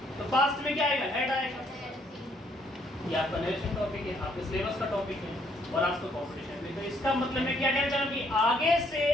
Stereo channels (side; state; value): both; normal; correlation 0.68